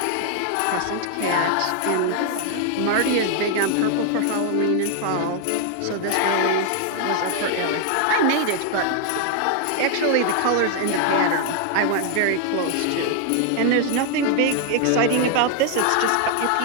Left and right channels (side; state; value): both; different; correlation 0.00